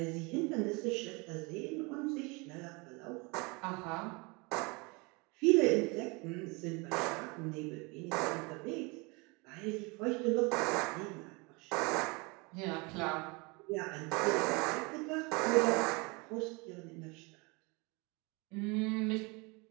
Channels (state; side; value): quieter; left; 28.0 dB